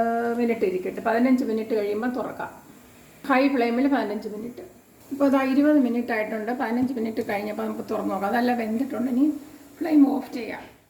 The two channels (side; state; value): both; identical; correlation 1.00